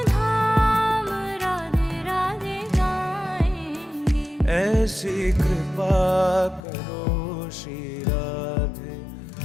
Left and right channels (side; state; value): right; drops out; at 6.6 s